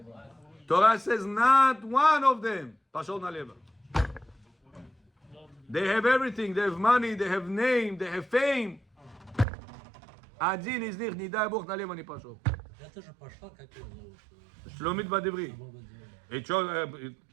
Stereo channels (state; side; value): drops out; left; at 9.5 s